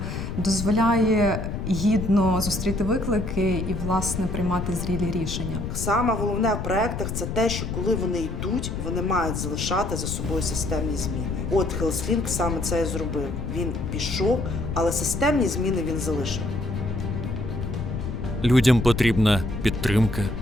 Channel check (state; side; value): noise; left; rumble, 4 dB below the sound